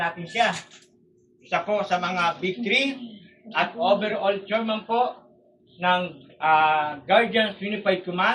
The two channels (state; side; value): identical; both; correlation 1.00